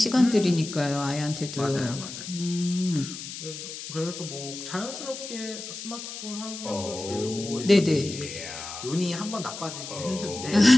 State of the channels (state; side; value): noise; left; hiss, 10 dB below the sound